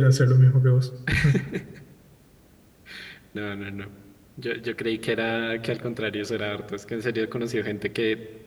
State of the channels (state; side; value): identical; both; correlation 1.00